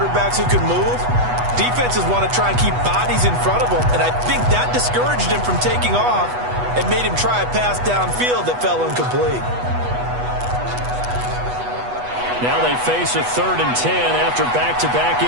who can move, defenses want to try and keep bodies in front of them, and I think that discouraged him from taking off and made him try a pass downfield that fell incomplete. Now they face a 3rd and 10 after back-to-back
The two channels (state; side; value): late; left; 8.2 ms